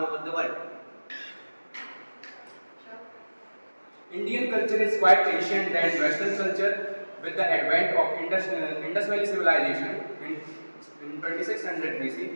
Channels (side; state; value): both; inverted; correlation -1.00